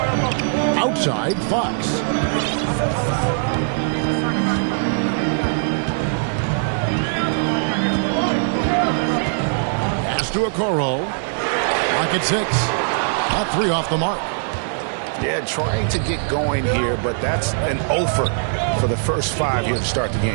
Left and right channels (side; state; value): left; silent; 64 dB below the other